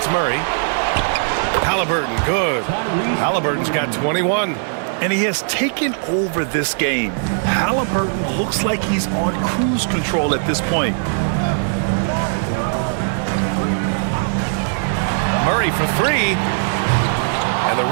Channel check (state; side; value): silent; left; 66 dB below the other